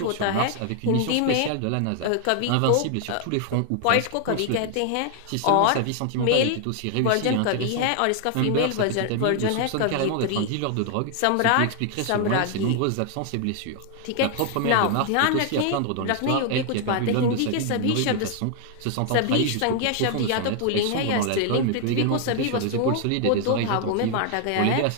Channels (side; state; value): both; different; correlation 0.00